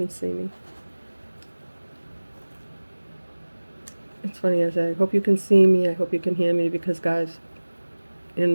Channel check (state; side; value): inverted; both; correlation -1.00